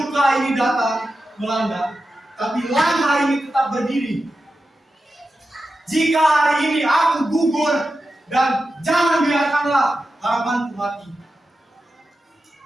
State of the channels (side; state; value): both; normal; correlation 0.91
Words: ini datang melanda, tapi langkah ini tetap berdiri. Jika hari ini aku gugur, dan jangan biarkanlah harapanku mati.